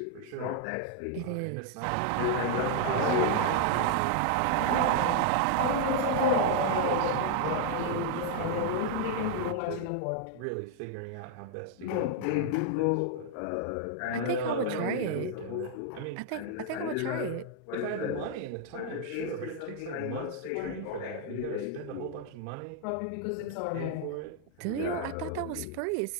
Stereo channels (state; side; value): different; both; correlation 0.00